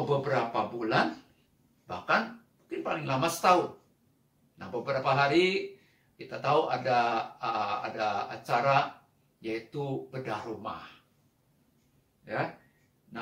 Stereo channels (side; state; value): both; identical; correlation 1.00